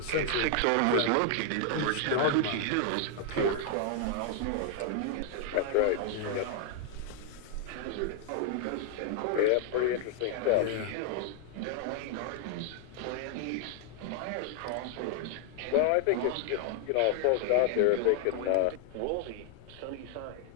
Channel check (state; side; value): different; both; correlation 0.00